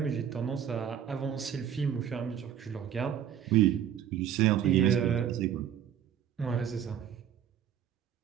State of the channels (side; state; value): left; quieter; 9.4 dB